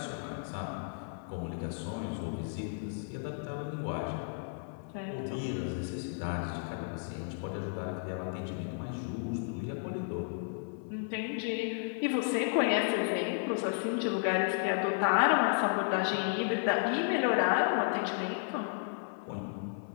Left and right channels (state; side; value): silent; right; 55 dB below the other